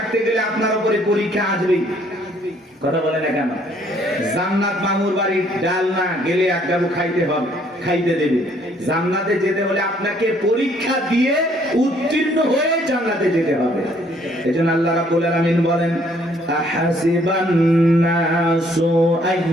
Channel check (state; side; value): normal; both; correlation 0.64